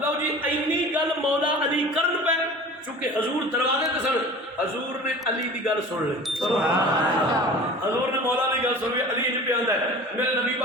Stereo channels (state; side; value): normal; both; correlation 0.40